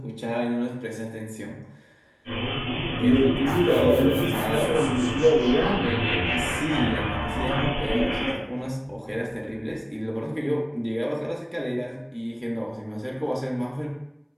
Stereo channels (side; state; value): both; identical; correlation 1.00